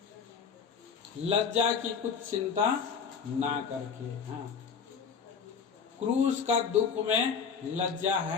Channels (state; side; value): quieter; right; 6.3 dB